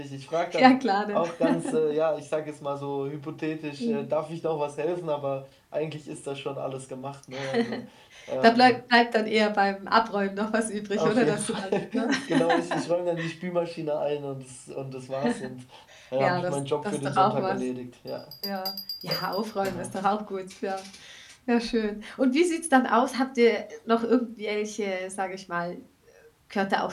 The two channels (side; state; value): both; identical; correlation 1.00